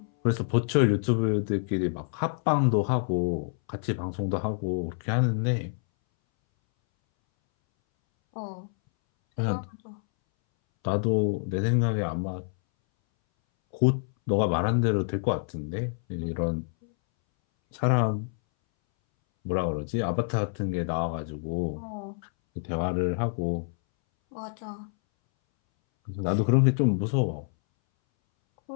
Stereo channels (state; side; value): silent; right; 60 dB below the other